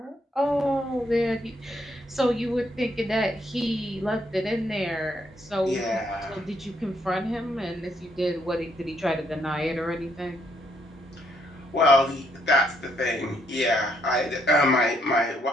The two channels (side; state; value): both; normal; correlation 0.72